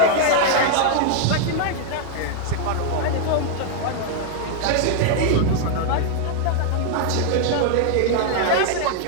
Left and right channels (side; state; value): both; different; correlation 0.00